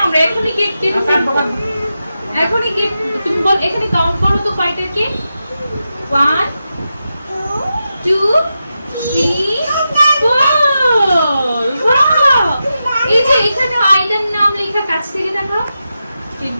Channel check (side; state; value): both; inverted; correlation -0.89